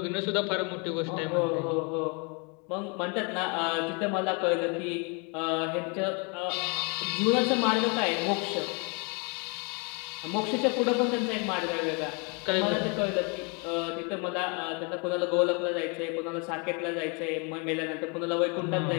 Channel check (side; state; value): right; quieter; 33.3 dB